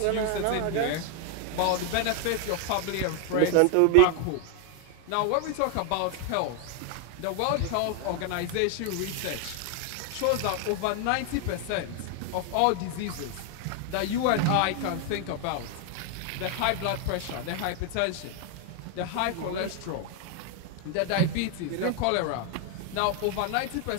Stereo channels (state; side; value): different; both; correlation 0.00